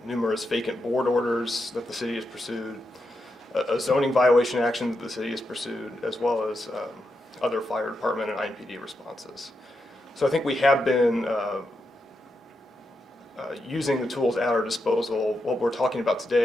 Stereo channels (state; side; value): normal; both; correlation 0.85